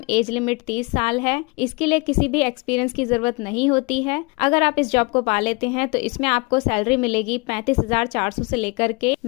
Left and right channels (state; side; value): quieter; right; 28.6 dB